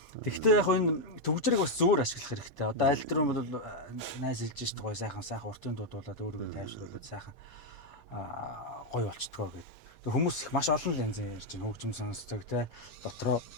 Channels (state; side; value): late; right; 8.7 ms